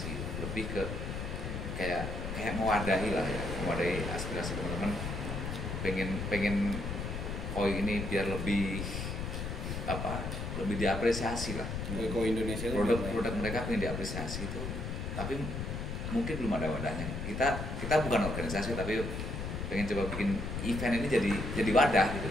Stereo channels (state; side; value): noise; left; rumble, 4 dB below the sound